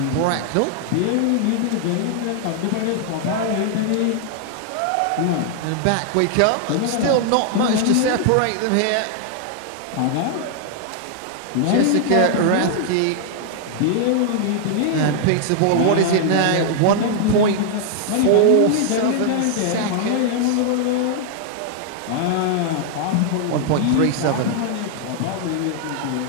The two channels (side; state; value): both; different; correlation 0.00